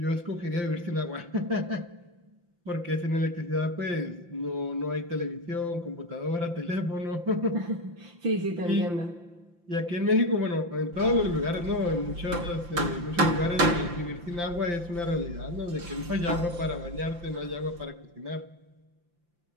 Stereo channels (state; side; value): late; left; 5.8 ms